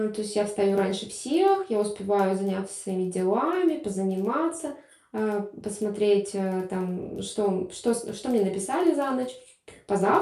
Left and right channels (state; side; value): identical; both; correlation 1.00